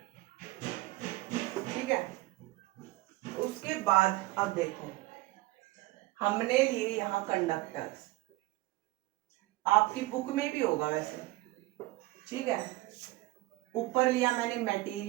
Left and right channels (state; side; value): quieter; left; 19.4 dB